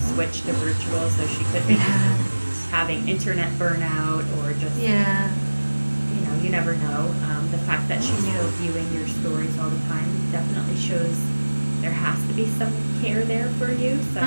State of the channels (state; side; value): inverted; both; correlation -1.00